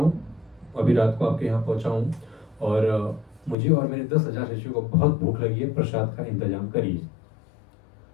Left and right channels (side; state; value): right; drops out; at 3.6 s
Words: अभी रात को आपके यहाँ पहुंचा हूँ, और मुझे और मेरे 10,000 शिष्यों को बहुत भूख लगी है, प्रसाद का इंतजाम करिए।